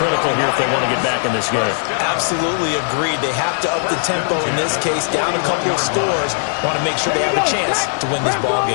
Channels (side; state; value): right; silent; digital silence